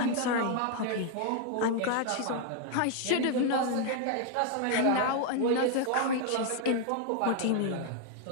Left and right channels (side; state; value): both; different; correlation 0.00